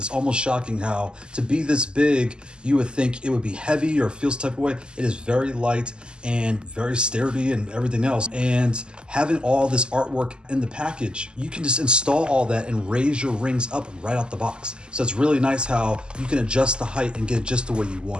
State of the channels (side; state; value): left; late; 0.048 ms